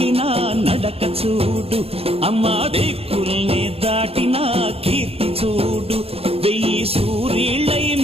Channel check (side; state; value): left; late; 0.28 ms